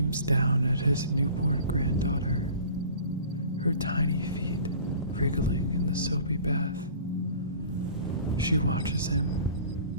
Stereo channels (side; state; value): both; inverted; correlation -0.45